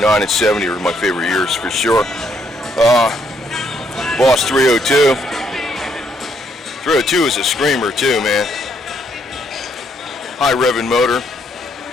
and 70 are my favorite years for sure. Boss 302. 302 is a screamer too, man. High revving motor.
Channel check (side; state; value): both; normal; correlation 0.72